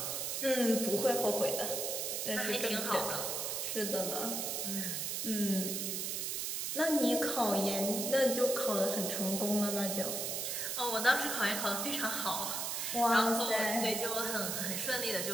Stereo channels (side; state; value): right; noise; hiss, 1 dB below the sound